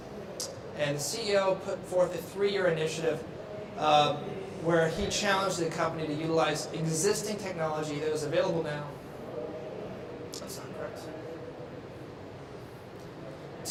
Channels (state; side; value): identical; both; correlation 1.00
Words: And the CEO put forth a 3-year initiative where he challenged the company to utilize existing technology that was available now. That's not correct.